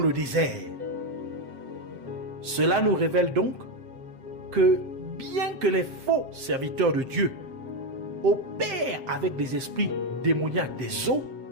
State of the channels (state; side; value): late; left; 7.5 ms